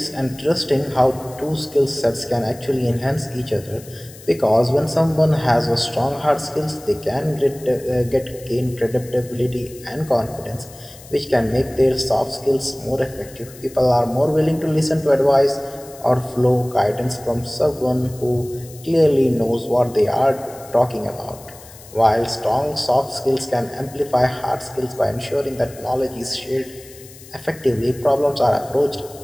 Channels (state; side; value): noise; left; hiss, 20 dB below the sound